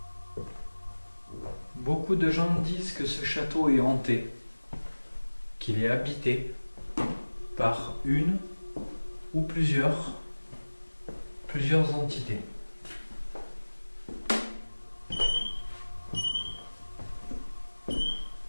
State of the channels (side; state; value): both; inverted; correlation -1.00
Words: Beaucoup de gens disent que ce château est hanté, qu'il est habité par une ou plusieurs entités.